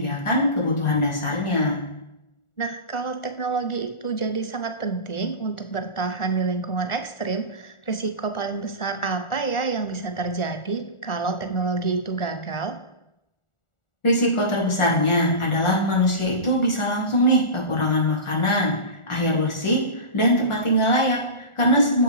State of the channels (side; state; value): right; late; 1.4 ms